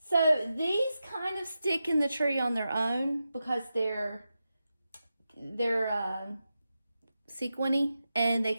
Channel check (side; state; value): both; inverted; correlation -0.90